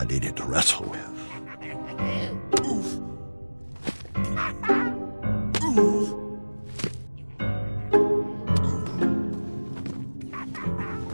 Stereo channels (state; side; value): inverted; both; correlation -1.00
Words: needed to wrestle with.